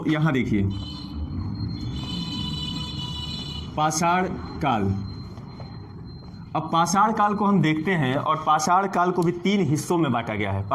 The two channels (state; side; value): identical; both; correlation 1.00